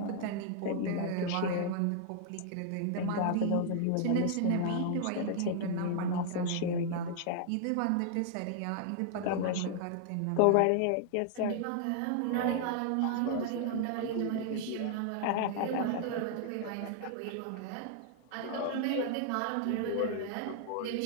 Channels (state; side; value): different; both; correlation -0.01